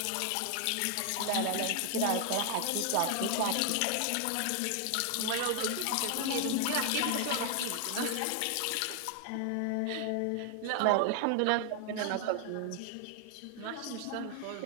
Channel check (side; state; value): both; different; correlation 0.00